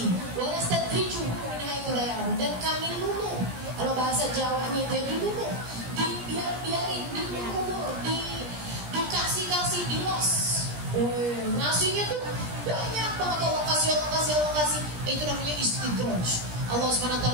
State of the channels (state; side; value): late; left; 17 ms